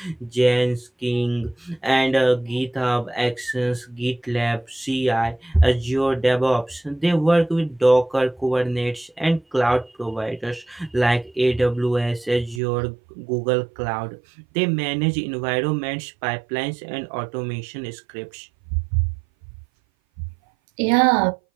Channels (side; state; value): left; drops out; at 12.6 s